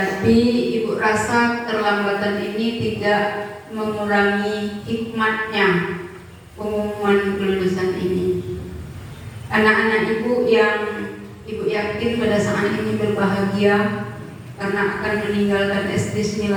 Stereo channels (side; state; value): both; identical; correlation 1.00